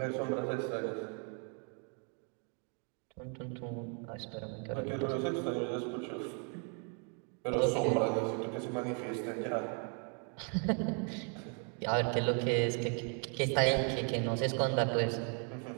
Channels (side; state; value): left; quieter; 39.7 dB